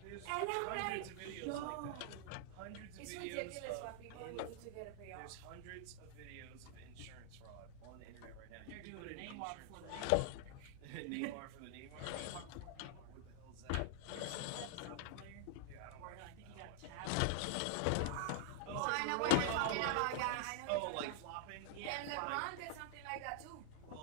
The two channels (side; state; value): both; different; correlation -0.01